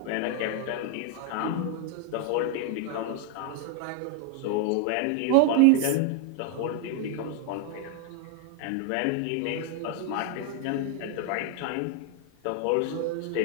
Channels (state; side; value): different; both; correlation 0.00